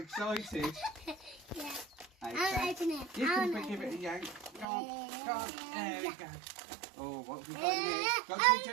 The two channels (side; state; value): left; drops out; at 4.7 s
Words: Yeah. Okay. I'll open it. You can give it a yank. Go on, go on. There we go. Oh, what have we got in here? Got to be